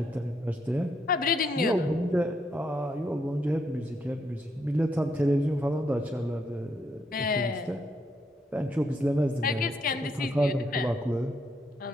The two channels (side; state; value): both; normal; correlation 0.76